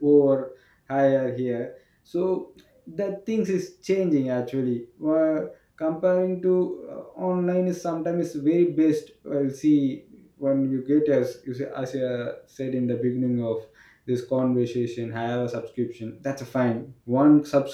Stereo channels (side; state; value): both; identical; correlation 1.00